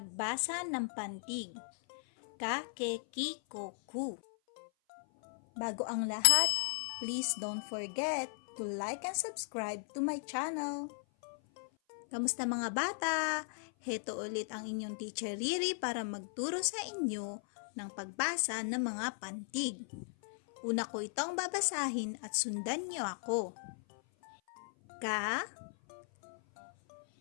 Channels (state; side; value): silent; right; 53 dB below the other